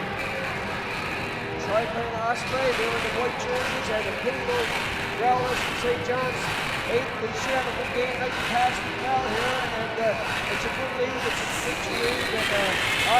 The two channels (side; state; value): both; identical; correlation 1.00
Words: Osprey. They're in the white jerseys, and the Pittsburgh Growlers from St. John's. They should have a good game tonight to pass the crowd here, and it's a good league. It's a provincial league, and